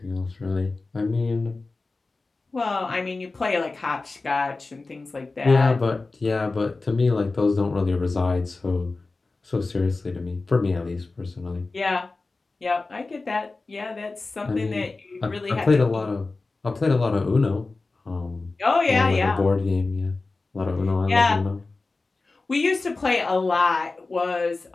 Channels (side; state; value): right; quieter; 3.6 dB